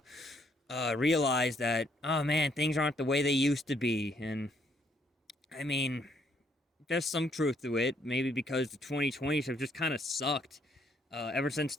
realize that, oh man, things aren't the way they used to be. And I mean, there's some truth to it. Maybe because the 2020s have just kind of sucked ever since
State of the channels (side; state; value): both; normal; correlation 0.69